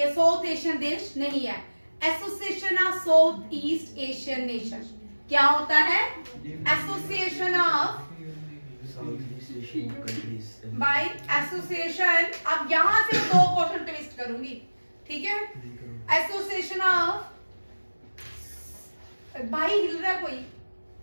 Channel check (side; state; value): both; inverted; correlation -1.00